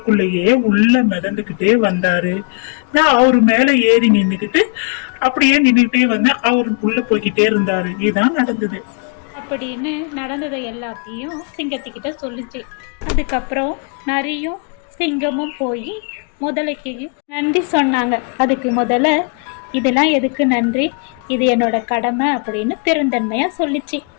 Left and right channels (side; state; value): right; quieter; 37.0 dB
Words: உள்ள மிதந்துகிட்டே வந்தாரு. நான் அவரு மேல ஏறி நின்னுக்கிட்டு அப்படியே நின்றுட்டே வந்தேன். அவரு உள்ள போய்கிட்டே இருந்தாரு. இதுதான் நடந்தது அப்படின்னு நடந்ததை எல்லாத்தையும் சிங்கத்துக்கிட்ட சொல்லிச்சு. அதுக்கப்புறம் நரியும் சிங்கமும் போய் முதலைக்கு நன்றி சொன்னாங்க. அதுக்கு முதல்ல இதெல்லாம் எதுக்கு நன்றி, இது என்னோட கடமை அப்படின்னு பெருந்தன்மையாக சொல்லிச்சு.